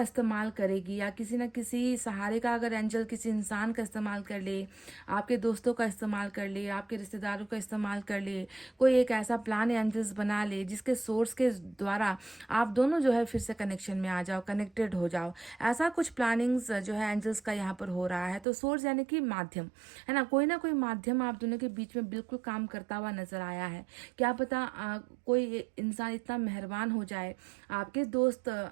इस्तेमाल करेगी या किसी ना किसी सहारे का, अगर एंजल किसी इंसान का इस्तेमाल कर ले, आपके दोस्तों का इस्तेमाल कर ले, आपके रिश्तेदारों का इस्तेमाल कर ले, कोई एक ऐसा प्लान एंजल्स बना ले जिसके सोर्स के द्वारा आप दोनों जो है फिर से कनेक्शन में आ जाओ, कनेक्टेड हो जाओ। ऐसा कुछ प्लानिंग्स जो है एंजल्स का यहाँ पर हो रहा है। तो सोर्स यानी कि माध्यम, है ना कोई माध्यम आप दोनों के बीच में बिल्कुल काम करता हुआ नजर आया है। क्या पता कोई इंसान इतना मेहरबान हो जाए, आपके दोस्त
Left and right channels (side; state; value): left; drops out; at 18.4 s